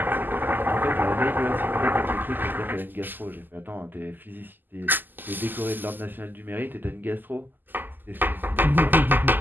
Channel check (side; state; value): left; late; 0.089 ms